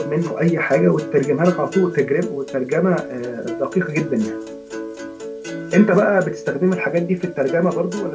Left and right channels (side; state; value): both; identical; correlation 1.00